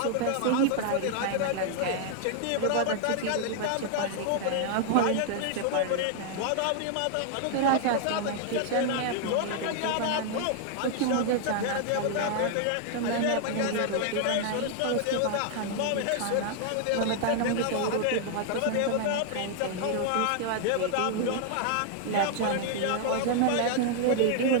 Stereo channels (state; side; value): different; both; correlation 0.00